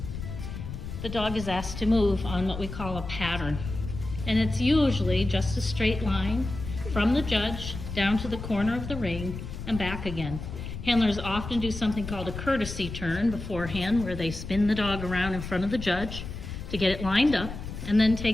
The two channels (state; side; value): noise; left; rumble, 8 dB below the sound